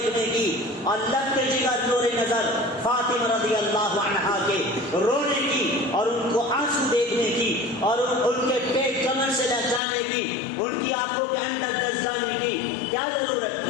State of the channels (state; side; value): drops out; right; at 9.8 s